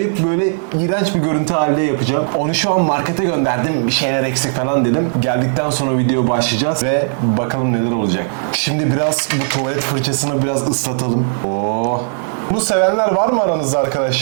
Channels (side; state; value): left; silent; 56 dB below the other